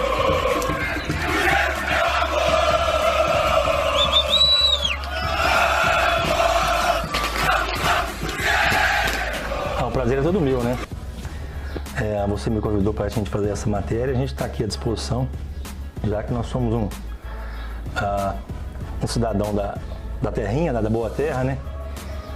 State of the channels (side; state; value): both; identical; correlation 1.00